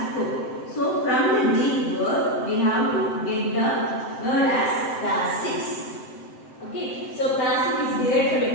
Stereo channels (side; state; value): right; late; 7.7 ms